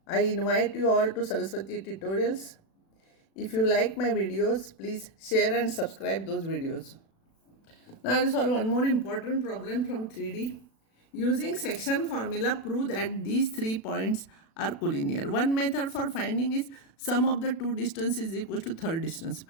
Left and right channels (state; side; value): late; right; 36 ms